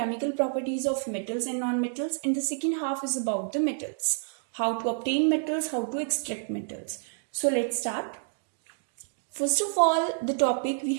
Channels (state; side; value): silent; left; digital silence